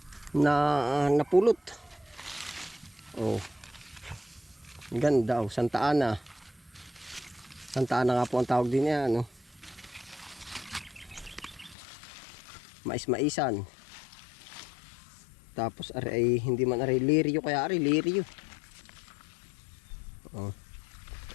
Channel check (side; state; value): right; drops out; at 11.8 s